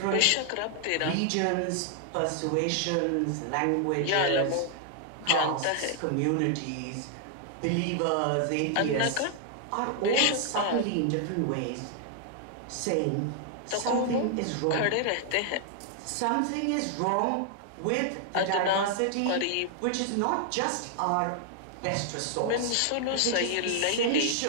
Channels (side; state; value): both; different; correlation 0.00